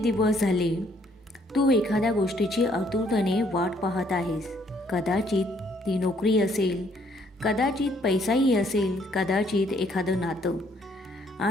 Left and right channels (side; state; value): both; normal; correlation 0.67